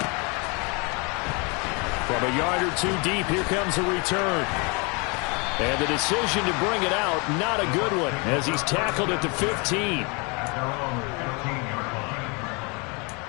From a yard or 2 deep, here comes a return. And the decision to bring it out, not a good one, as he's tackled at the 15.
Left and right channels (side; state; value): right; quieter; 31.0 dB